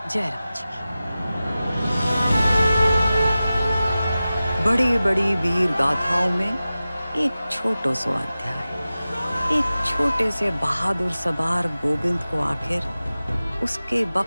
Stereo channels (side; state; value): both; inverted; correlation -0.95